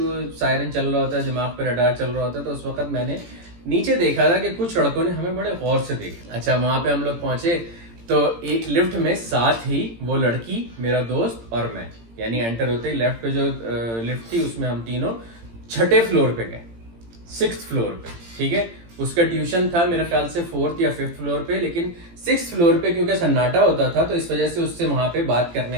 सायरन चल रहा होता है, दिमाग पे रडार चल रहा होता है, तो उस वक्त मैंने नीचे देखा था कि कुछ लड़कों ने हमें बड़े गौर से देखा। अच्छा वहां पे हम लोग पहुंचे तो एक लिफ्ट में साथ ही वो लड़की, मेरा दोस्त और मैं, यानी एंटर होते ही लेफ्ट पे जो लिफ्ट थी उसमें हम तीनों छठे फ्लोर पे गए, 6th फ्लोर पे, ठीक है। उसका ट्यूशन था मेरे ख्याल से 4th या 5th फ्लोर पे, लेकिन 6th फ्लोर पे क्योंकि सन्नाटा होता था तो इस वजह से उससे वहां पे बात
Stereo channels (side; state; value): left; late; 18 ms